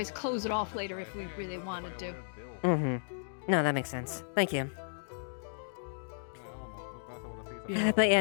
close it off later if we really wanted to. Mm-hmm. No, that makes sense. Thank you. But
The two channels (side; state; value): right; silent; digital silence